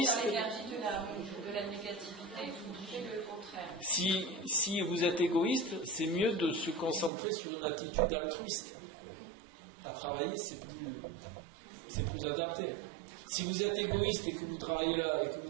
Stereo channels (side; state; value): left; drops out; at 7.1 s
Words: L'énergie de la négativité, vous trouvez le contraire. Si vous êtes égoïste, c'est mieux de se concentrer sur une attitude altruiste. À travailler, c'est plus adapté. Si vous êtes égoïste et que vous travaillez là, et que vous